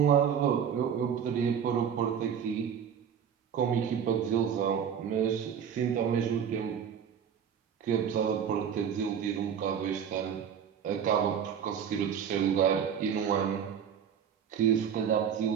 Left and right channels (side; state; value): left; quieter; 8.0 dB